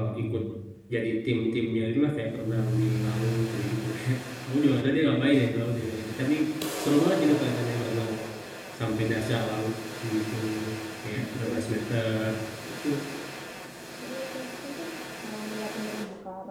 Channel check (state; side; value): identical; both; correlation 1.00